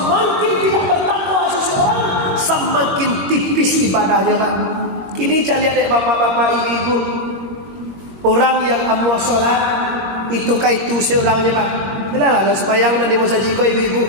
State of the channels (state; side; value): late; left; 21 ms